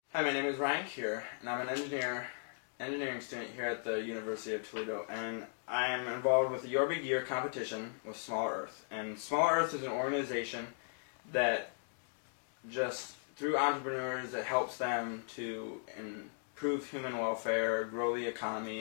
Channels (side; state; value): right; silent; digital silence